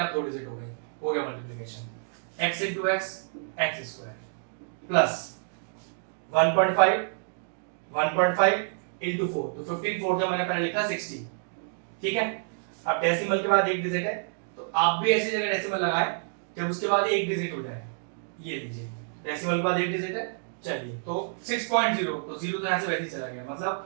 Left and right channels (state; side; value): silent; left; digital silence